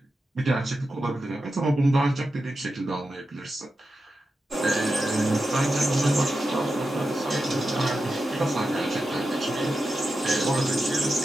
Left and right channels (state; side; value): normal; both; correlation 0.90